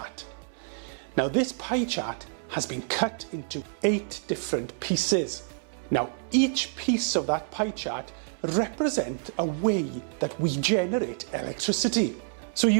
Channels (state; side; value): silent; left; 59 dB below the other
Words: Now this pie chart has been cut into 8 different pieces. Now each piece of that pie chart represents a way that we generate electricity. So